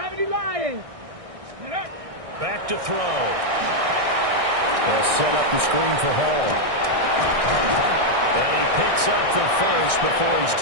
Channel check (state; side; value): late; left; 1.6 ms